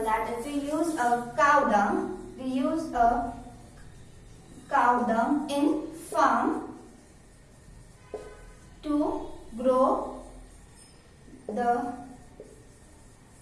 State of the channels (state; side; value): identical; both; correlation 1.00